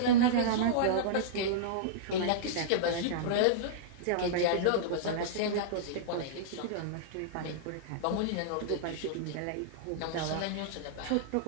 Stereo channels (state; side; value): different; both; correlation -0.02